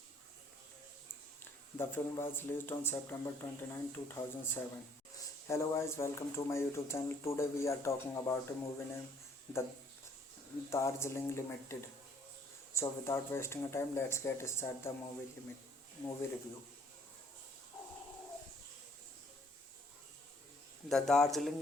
The film was released on September 29, 2007. Hello guys, welcome to my YouTube channel. Today we are talking about a movie named The Darjeeling Limited. So without wasting time, let's get started the movie review. The Darjeeling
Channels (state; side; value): normal; both; correlation 0.62